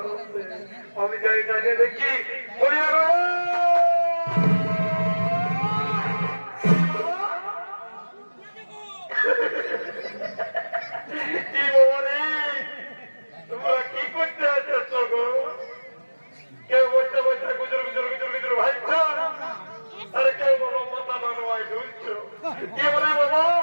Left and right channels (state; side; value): inverted; both; correlation -1.00